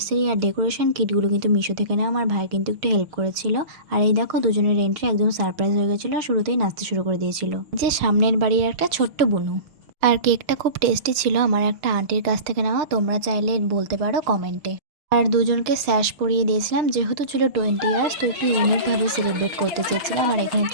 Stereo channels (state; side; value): late; left; 6.2 ms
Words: আর ডেকোরেশন কিটগুলো কিন্তু মিশো থেকে নেওয়া। আমার ভাই কিন্তু একটু হেল্প করেছিল। আর এই দেখো দুজনের এন্ট্রি একদম সারপ্রাইজ হয়ে গেছিলো। শুরুতেই নাচতে শুরু করে দিয়েছিল যে সামনের বাড়ির একটা ছোট্ট বুনু। আর কেকটা খুব টেস্টি ছিল, আমার একটা আন্টির কাছ থেকে নেওয়া, তোমরা চাইলে বলতে পারো কমেন্টে। আর দুজনকে স্যাশ পরিয়ে দিয়েছিলাম, যেহেতু ছিল 20 ইয়ার্স তো একটু ইউনিকভাবে সেলিব্রেট করতে চেয়েছিলাম। আর এখানে